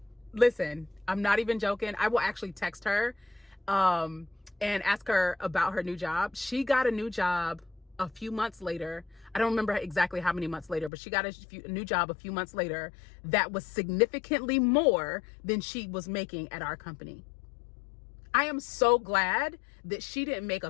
not even joking. I will actually text her and ask her about her new job. She got a new job a few months later. I don't remember exactly how many months later, but she got a new job a few months later that was significantly more than she was making at our company. I am so glad that she didn't make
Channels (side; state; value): right; drops out; at 10.9 s